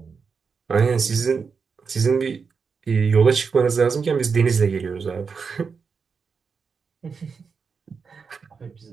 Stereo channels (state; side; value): quieter; left; 5.5 dB